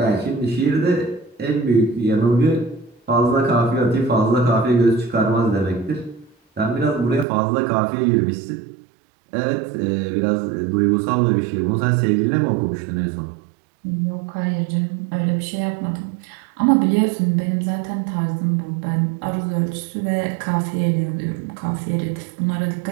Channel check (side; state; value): left; drops out; at 7.2 s